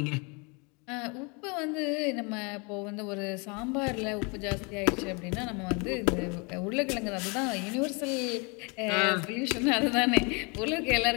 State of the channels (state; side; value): quieter; right; 31.3 dB